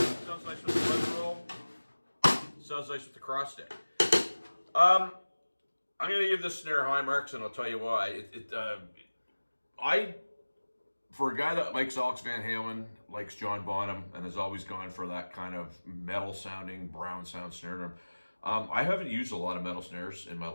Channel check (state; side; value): inverted; both; correlation -1.00